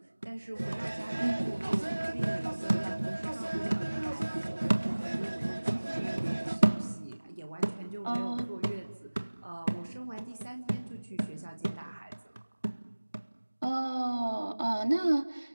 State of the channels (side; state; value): both; inverted; correlation -1.00